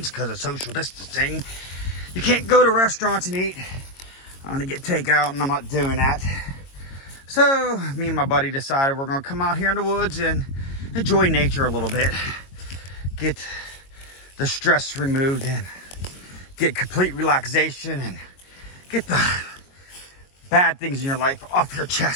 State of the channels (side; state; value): right; late; 22 ms